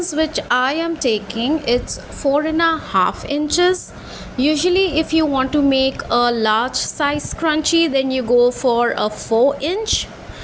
which I am taking, it's 4.5 inches. Usually if you want to make a large size scrunchie, then you go for a 4 inch,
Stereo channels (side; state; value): both; identical; correlation 1.00